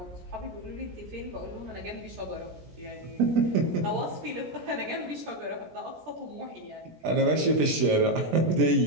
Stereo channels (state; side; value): late; left; 17 ms